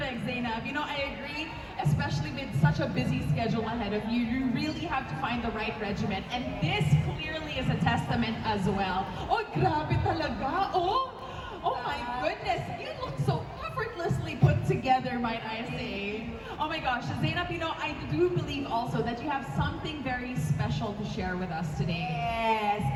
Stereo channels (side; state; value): both; identical; correlation 1.00